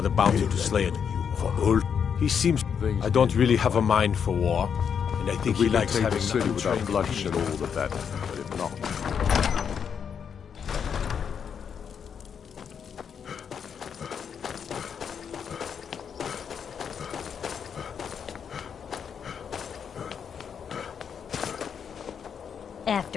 a bounty to slay it. For Ulf, he seems... I don't really have a mind for war, and I think If we he can likes take having the city nothing without trained. bloodshed, all the better. But if not,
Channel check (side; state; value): right; quieter; 7.3 dB